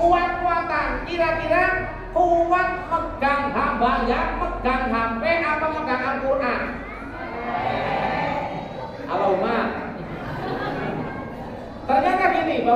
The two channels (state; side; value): identical; both; correlation 1.00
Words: kira-kira kuat megang hambanya, megang HP apa megang Al-Quran? Allahumma. Ternyata gini,